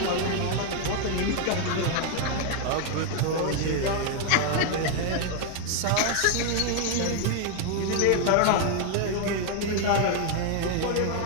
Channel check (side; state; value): both; different; correlation 0.00